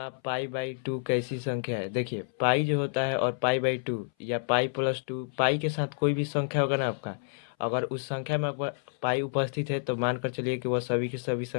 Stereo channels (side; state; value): right; silent; 58 dB below the other